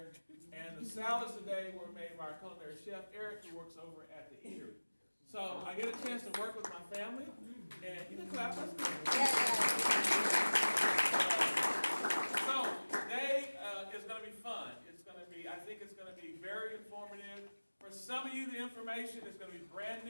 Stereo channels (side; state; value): both; inverted; correlation -1.00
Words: And the salads today were made by our culinary chef, Eric, who works over at the eatery. So I get a chance to work with my family, and you can clap. That's good. So today is going to be fun. It's going to be, I think it's going to be very informative. For some of you, the information is going to be brand